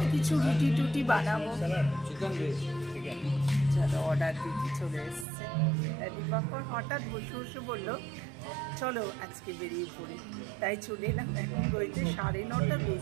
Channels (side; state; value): left; drops out; at 5.2 s